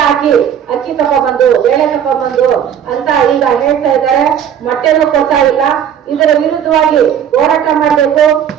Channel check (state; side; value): quieter; left; 9.0 dB